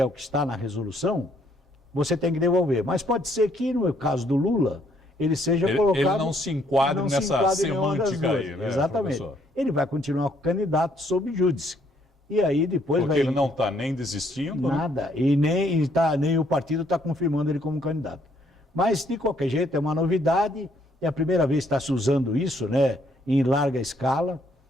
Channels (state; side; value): normal; both; correlation 0.68